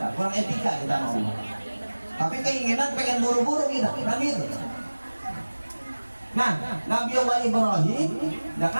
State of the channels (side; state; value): both; inverted; correlation -1.00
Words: kurang etika kita mau. Tapi keinginan pengen buru-buru kita, kan gitu. Nah, Nabi Allah Ibrahim, ya